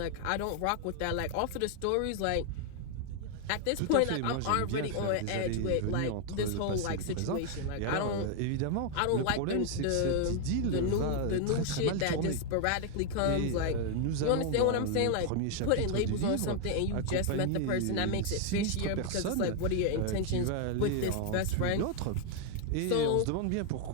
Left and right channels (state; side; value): different; both; correlation 0.00